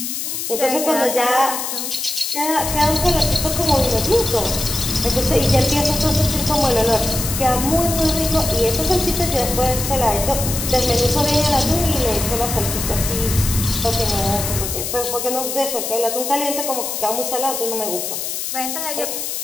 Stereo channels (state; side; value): noise; left; hiss, 4 dB below the sound